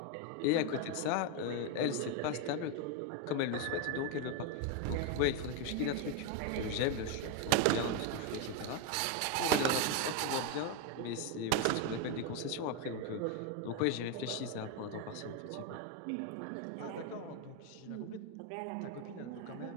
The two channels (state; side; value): different; both; correlation 0.02